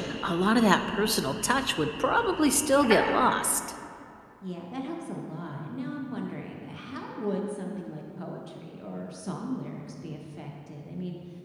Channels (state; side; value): identical; both; correlation 1.00